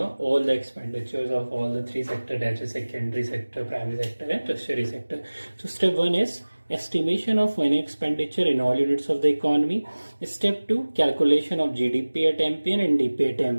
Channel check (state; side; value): inverted; both; correlation -1.00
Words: the expenditures of all the three sectors, that is secondary sector, primary sector, and tertiary sector. So step 1 is estimation of money expenditure in all units of the economy. Step 2, calculation of GDP at MP and NDP at